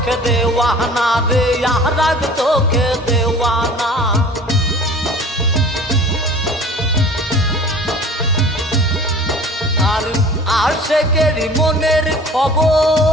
দেওয়ানা রে, আর এক চোখে দেওয়ানা। আর আশেকের মনের খবর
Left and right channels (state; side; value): normal; both; correlation 0.44